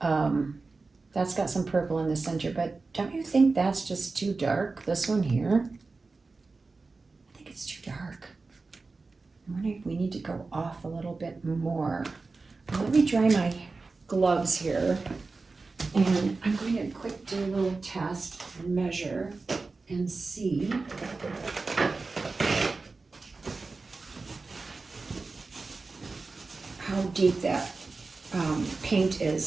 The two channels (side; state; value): left; quieter; 3.9 dB